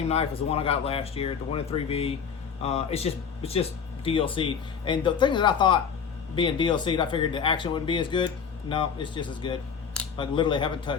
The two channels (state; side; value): quieter; right; 6.6 dB